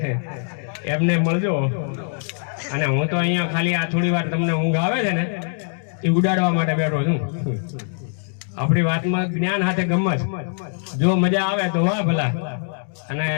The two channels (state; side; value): silent; right; digital silence